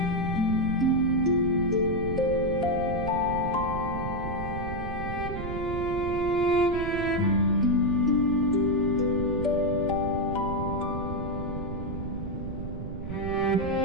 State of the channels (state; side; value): noise; right; rumble, 7 dB below the sound